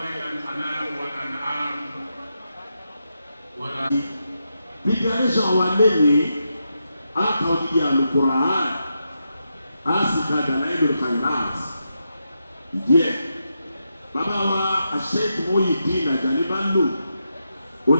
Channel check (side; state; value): both; inverted; correlation -0.85